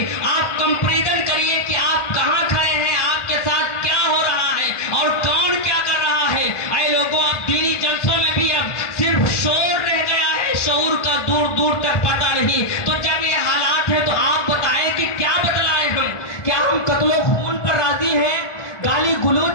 آپ کمپیریزن کریے کہ آپ کہاں کھڑے ہیں، آپ کے ساتھ کیا ہو رہا ہے اور کون کیا کر رہا ہے۔ اے لوگوں، اب دینی جلسوں میں بھی اب صرف شور رہ گیا ہے، شعور کا دور دور تک پتہ نہیں۔ تو جب یہ حالات ہے تو آپ بتائیں کہ کیا بدلائیں ہم؟ کیا ہم قتل و خون پر راضی ہیں، گالی گلوچ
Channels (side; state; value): right; late; 1.4 ms